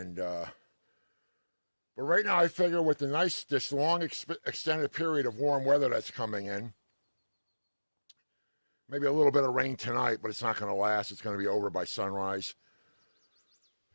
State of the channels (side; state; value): both; inverted; correlation -1.00